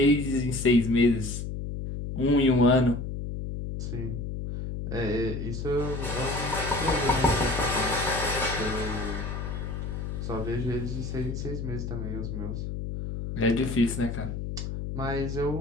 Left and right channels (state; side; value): noise; left; hum, 5 dB below the sound